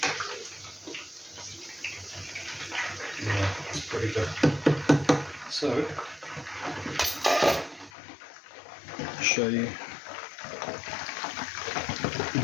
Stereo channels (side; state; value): right; drops out; at 7.9 s